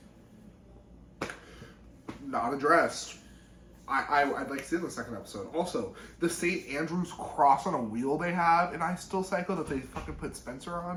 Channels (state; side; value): identical; both; correlation 1.00